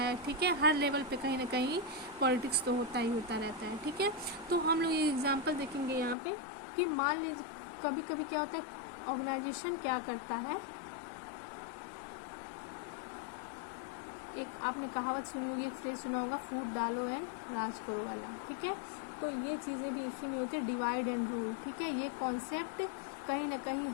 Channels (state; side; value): drops out; right; at 6.2 s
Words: ठीक है, हर लेवल पे कहीं ना कहीं पॉलिटिक्स तो होता ही होता रहता है। ठीक है, तो हम लोग ये एग्जांपल देखेंगे यहाँ पे कि मान लीजिए कभी कभी क्या होता है, ऑर्गेनाइजेशन क्या करता है, एक आपने कहावत सुनी होगी, एक फ्रेज सुना होगा, फूट डालो एंड राज करो वाला। ठीक है, तो ये चीज़ें भी इसी में होती है, डिवाइड एंड रूल। ठीक है, ये कॉन्सेप्ट कहीं ना कहीं